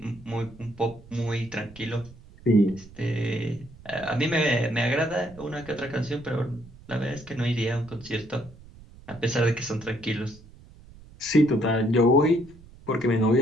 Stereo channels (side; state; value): right; noise; rumble, 21 dB below the sound